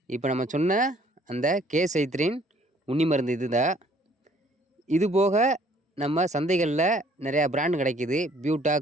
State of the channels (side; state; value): both; normal; correlation 0.60